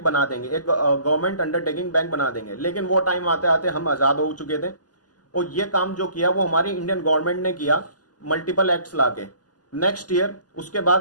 बना देंगे, एक गवर्नमेंट अंडरटेकिंग बैंक बना देंगे। लेकिन वो टाइम आते आते हम आज़ाद हो चुके थे, और ये काम जो किया वो हमारी इंडियन गवर्नमेंट ने किया मल्टीपल एक्ट्स लाके। नेक्स्ट ईयर उसके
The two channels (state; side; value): late; right; 0.68 ms